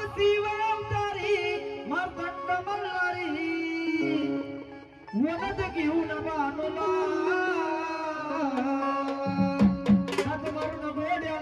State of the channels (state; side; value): identical; both; correlation 1.00